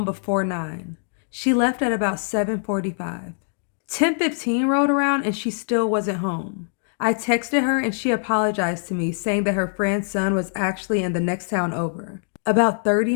before 9. She left at about 7:45. 10:15 rolled around and she still wasn't home. I texted her and she apologized to me, saying that her friend's son was actually in the next town over, about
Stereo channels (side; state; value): right; silent; digital silence